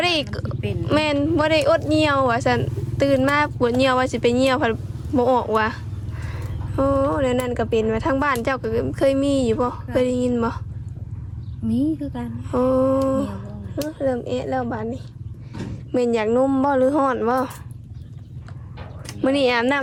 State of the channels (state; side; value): identical; both; correlation 1.00